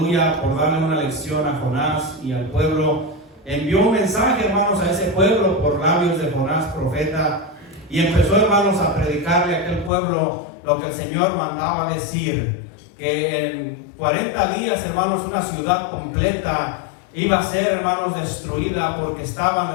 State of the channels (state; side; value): drops out; right; at 9.9 s